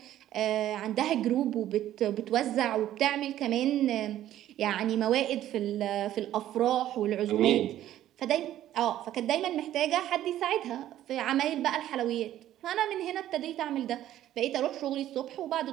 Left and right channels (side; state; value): left; quieter; 12.7 dB